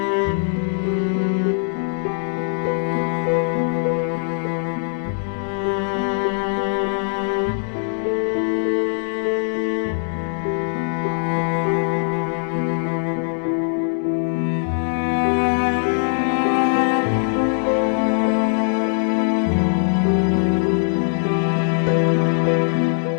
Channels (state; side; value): silent; right; 65 dB below the other